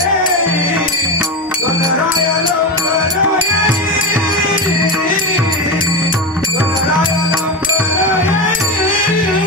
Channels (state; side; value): normal; both; correlation 0.18